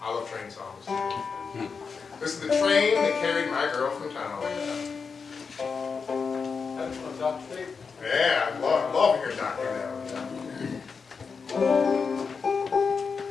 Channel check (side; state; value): right; quieter; 5.4 dB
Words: I love train songs. This is the train that carried my girl from town. That's one of Doc's favorite. Yeah, I love hearing Doc do that.